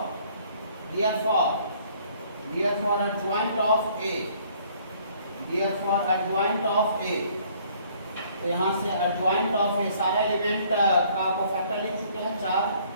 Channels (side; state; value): both; inverted; correlation -0.60